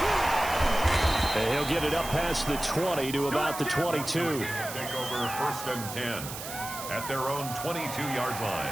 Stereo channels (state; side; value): noise; right; hiss, 9 dB below the sound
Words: And he'll get it up past the 20 to about the 22. Take over 1st and 10. at their own 22-yard